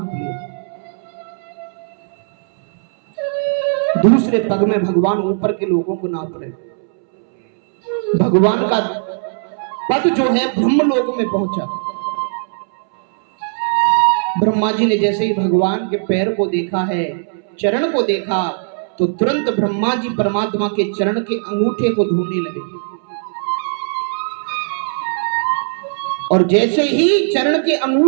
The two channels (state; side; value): silent; left; 67 dB below the other